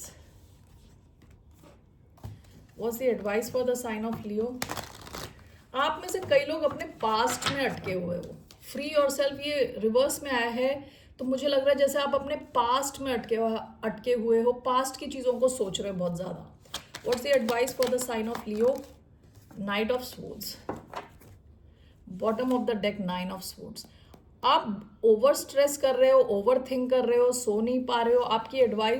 What's the advice for the sign of Leo? आप में से कई लोग अपने पास्ट में अटके हुए हो. फ्री योरसेल्फ ये रिवर्स में आया है, तो मुझे लग रहा है जैसे आप अपने पास्ट में अटके हुए हो, पास्ट की चीज़ों को सोच रहे हो बहुत ज़्यादा. What's the advice for the sign of Leo? Knight of Swords. Bottom of the deck, Nine of Swords. आप ओवर स्ट्रेस कर रहे हो, ओवर थिंक कर रहे हो, सो नहीं पा रहे हो. आपकी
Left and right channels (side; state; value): both; identical; correlation 1.00